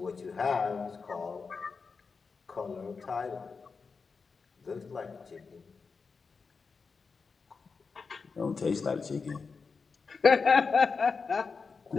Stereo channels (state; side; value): quieter; right; 4.9 dB